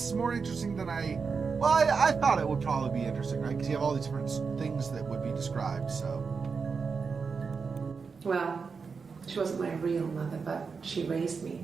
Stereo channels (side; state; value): left; quieter; 5.2 dB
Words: is more interesting than I thought it would probably be interesting, right? Because you have all these different things that would be described, so. Well, she wasn't my real mother, but she raised me.